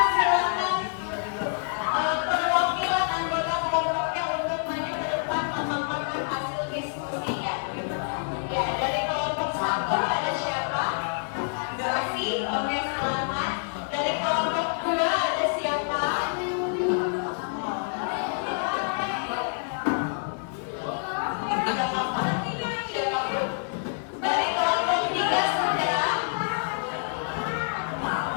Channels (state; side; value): silent; right; digital silence